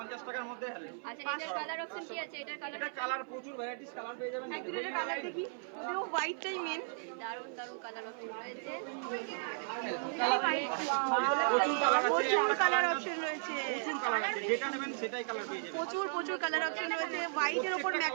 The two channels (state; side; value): silent; left; 54 dB below the other